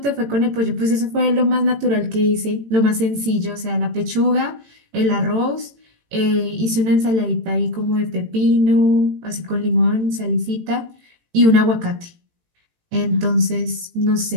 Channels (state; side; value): late; left; 18 ms